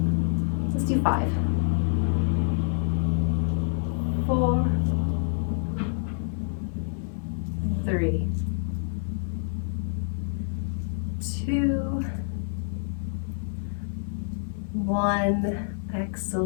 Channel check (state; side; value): silent; right; 60 dB below the other